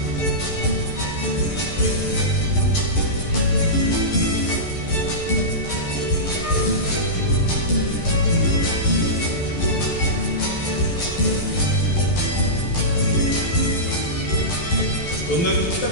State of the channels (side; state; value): right; late; 11 ms